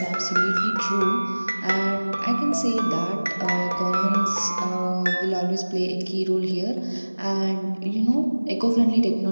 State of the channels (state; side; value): inverted; both; correlation -1.00